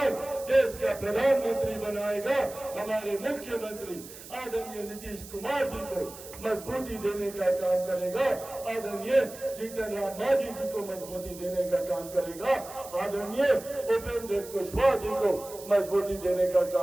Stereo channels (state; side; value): noise; right; hiss, 16 dB below the sound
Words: देश का प्रधानमंत्री बनाएगा। हमारे मुख्यमंत्री आदरणीय नीतीश कुमार जी को मजबूती देने का काम करेगा। आदरणीय जीतन राम मांझी जी को मजबूती देने का काम करेगा। आदरणीय उपेंद्र कुशवाहा जी को मजबूती देने का